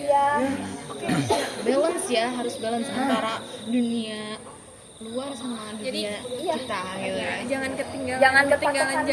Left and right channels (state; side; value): identical; both; correlation 1.00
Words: Balance ya, harus balance antara dunia luar sama Jadi, dunia iya. kita gitu ya. Jangan ketinggalan. Jangan ketinggalan berpatokan.